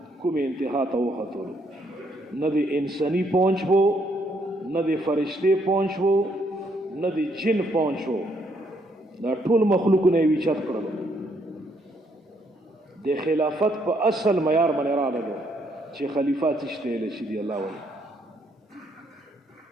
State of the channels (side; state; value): both; normal; correlation 0.71